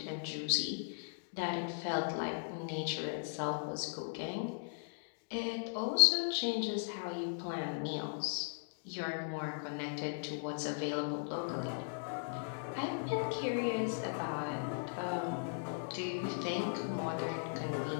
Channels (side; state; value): right; silent; digital silence